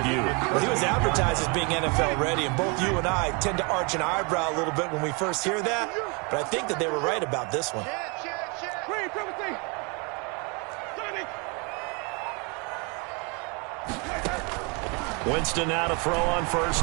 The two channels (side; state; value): left; quieter; 31.6 dB